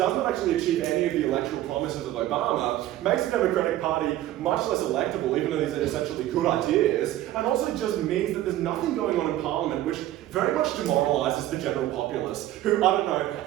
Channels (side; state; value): left; quieter; 14.0 dB